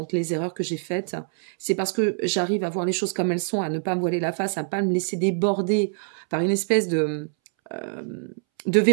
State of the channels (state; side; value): silent; left; 62 dB below the other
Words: les erreurs que j'ai faites. C'est parce que j'arrive à voir les choses comme elles sont, à ne pas me voiler la face, à ne pas me laisser déborder par une espèce de